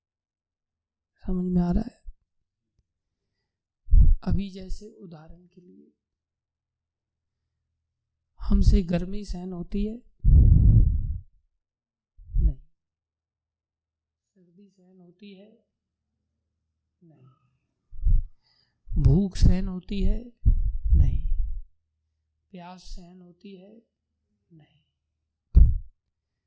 समझ में आ रहा है? अभी जैसे उदाहरण के लिए हमसे गर्मी सहन होती है? नहीं। सर्दी सहन होती है? नहीं। भूख सहन होती है? नहीं। प्यास सहन होती है? नहीं।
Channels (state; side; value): identical; both; correlation 1.00